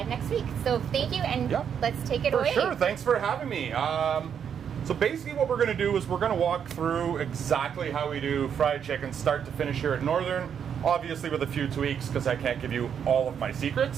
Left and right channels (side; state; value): left; quieter; 7.9 dB